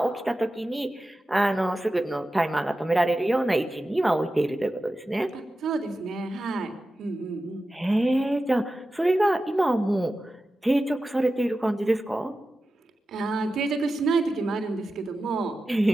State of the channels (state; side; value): normal; both; correlation 0.93